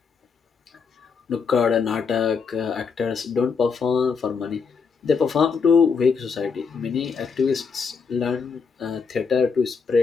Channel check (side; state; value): right; quieter; 5.5 dB